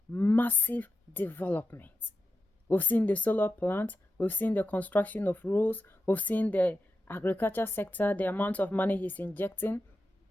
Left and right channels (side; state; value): both; normal; correlation 0.89